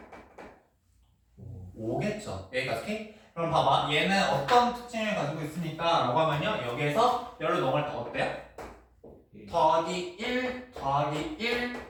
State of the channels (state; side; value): identical; both; correlation 1.00